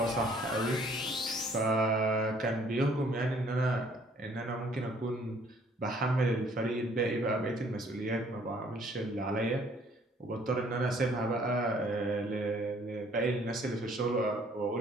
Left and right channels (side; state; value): both; normal; correlation 0.60